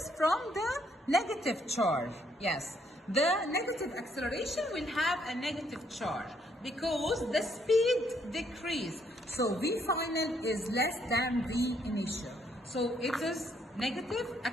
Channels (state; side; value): normal; both; correlation 0.70